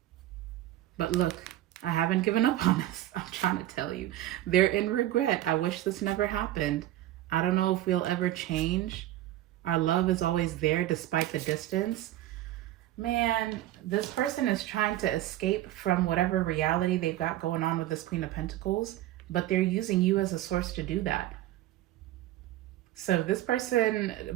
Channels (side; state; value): left; quieter; 14.3 dB